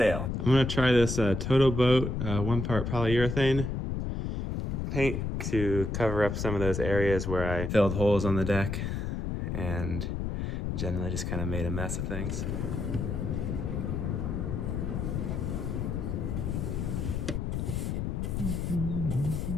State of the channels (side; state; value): left; noise; rumble, 2 dB below the sound